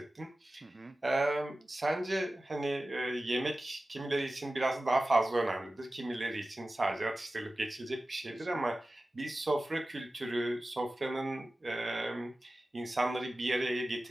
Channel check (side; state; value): both; normal; correlation 0.96